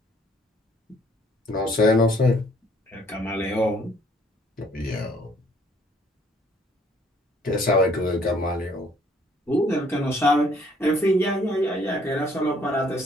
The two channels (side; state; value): both; normal; correlation 0.62